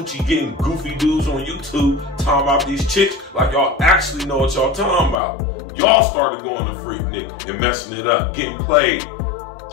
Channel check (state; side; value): drops out; right; at 5.2 s